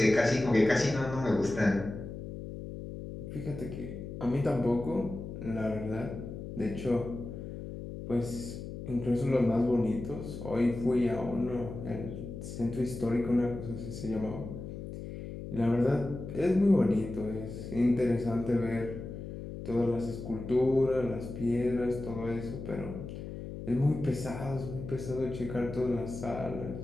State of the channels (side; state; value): left; noise; hum, 9 dB below the sound